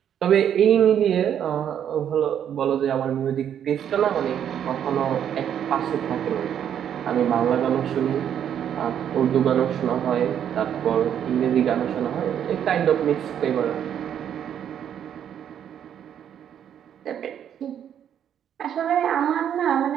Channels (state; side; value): quieter; left; 9.3 dB